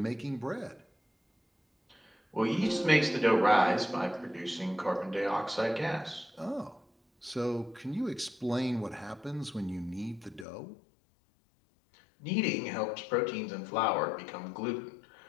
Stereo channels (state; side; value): drops out; right; at 10.5 s